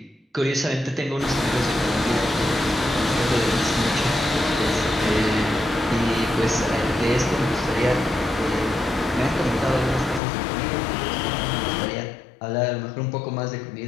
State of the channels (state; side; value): drops out; right; at 10.2 s